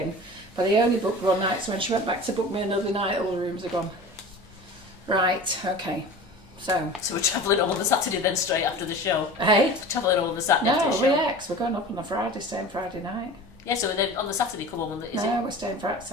but I only booked one night. So when she went back to book me another night, all the rooms are gone. Right. Okay. So we're travelling home on the Saturday then straight after the show. Hey. We're travelling home on the Saturday after the show. No, we're going up on the Friday, staying Friday night. Yeah, so then on the Saturday come home on the... We're staying Friday,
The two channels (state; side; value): normal; both; correlation 0.37